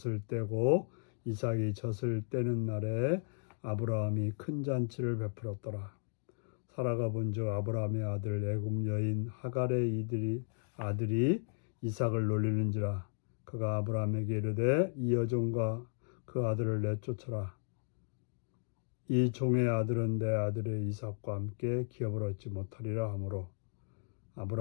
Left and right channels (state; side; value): silent; right; digital silence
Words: 떼고 이삭이 젖을 떼는 날에 아브라함이 큰 잔치를 베풀었더라. 사라가 본즉 아브라함의 아들 애굽 여인 하갈의 아들이 이삭을 놀리는지라. 그가 아브라함에게 이르되 이 여종과 그 아들을 내쫓으라. 이 종의 아들은 내 아들의 이삭과 함께 기업을 얻지 못하리라 하므로